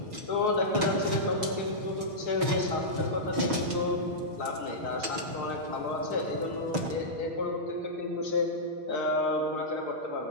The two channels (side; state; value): left; late; 6.2 ms